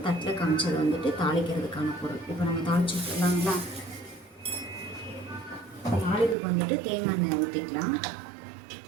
தட்டில் காமிச்சது தாளிக்கிறதுக்கான பொருள். இப்போ நம்ம தாளிச்சு விட்டுலாங்களா? தாளிப்புக்கு தேங்காய் எண்ணெய் ஊற்றிக்கலாம்.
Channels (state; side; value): drops out; left; at 6.4 s